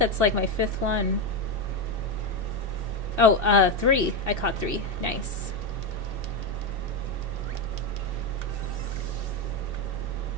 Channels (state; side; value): late; left; 2.7 ms